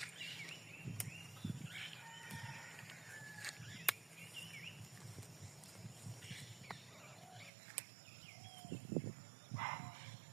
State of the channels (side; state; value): left; drops out; at 7.5 s